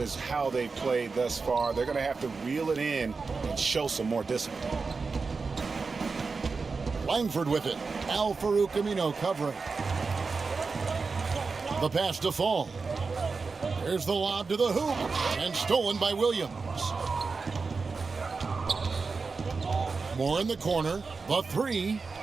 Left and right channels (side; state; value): left; quieter; 4.5 dB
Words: how they played thus far. They're going to have to reel it in and show some more discipline. Langford with it. Al-Farouq Aminu covering. The pass to Fall. Here's the lob to the hoop, and stolen by Williams. Moore in the corner. The 3.